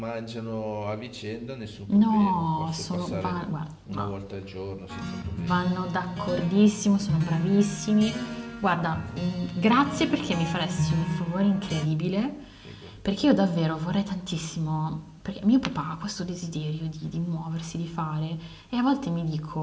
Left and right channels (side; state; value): both; identical; correlation 1.00